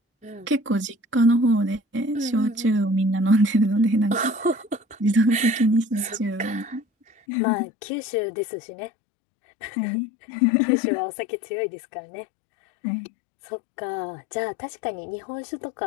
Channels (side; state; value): right; drops out; at 7.2 s